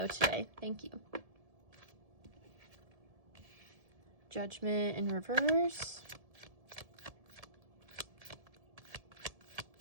today? Thank you. Judgment in reverse.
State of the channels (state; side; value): late; left; 1.7 ms